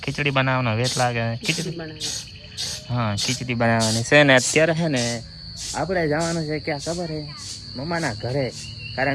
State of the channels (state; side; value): identical; both; correlation 1.00